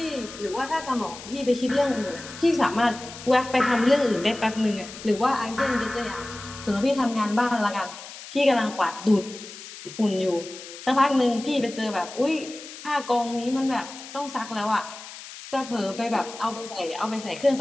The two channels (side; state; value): left; noise; hiss, 14 dB below the sound